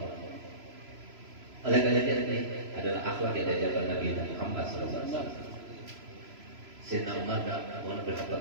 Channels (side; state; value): left; late; 3.0 ms